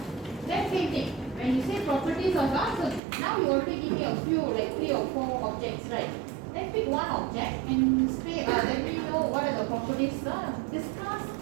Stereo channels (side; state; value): left; drops out; at 3.0 s